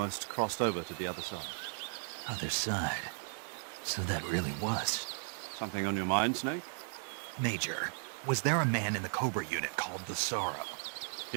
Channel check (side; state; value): left; silent; digital silence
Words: crossed over to the other side. Other side. So that really was. Something on your mind, Snake? Major, was there a man in the Cobra unit called the Sorrow?